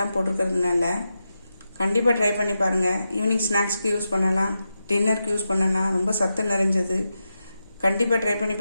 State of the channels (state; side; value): inverted; both; correlation -0.89